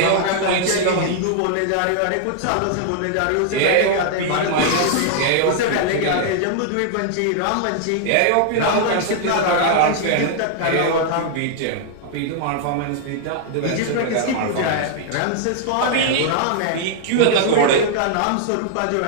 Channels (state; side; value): different; both; correlation -0.01